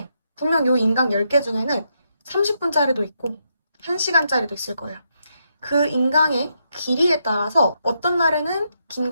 분명 이 인강 10개 중에는 30분짜리도 있고 1시간짜리도 있을 거예요. 그 인강의 길이에 따라서 어떤 날에는 긴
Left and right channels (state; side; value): inverted; both; correlation -0.80